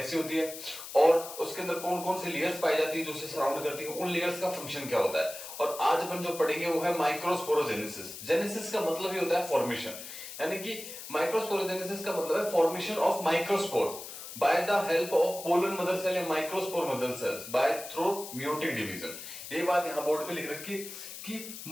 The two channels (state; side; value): noise; left; hiss, 11 dB below the sound